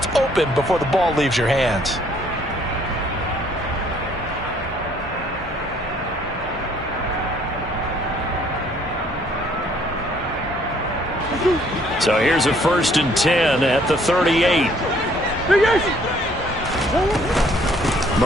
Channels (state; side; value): normal; both; correlation 0.62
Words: open before the ball leaves your hands. So here's a 1st and 10 at the 38.